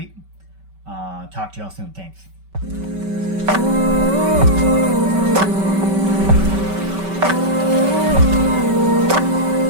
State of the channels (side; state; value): left; late; 5.2 ms